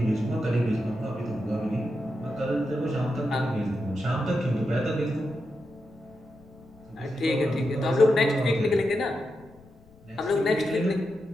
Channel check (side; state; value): left; noise; rumble, 25 dB below the sound